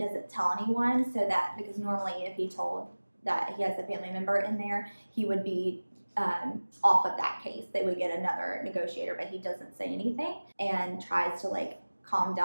tell anyone, so that, because normally if he told that he has a family member in there, he would be off of that case. They would get another negotiator, but he doesn't say anything and tries to like calm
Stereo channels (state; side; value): inverted; both; correlation -1.00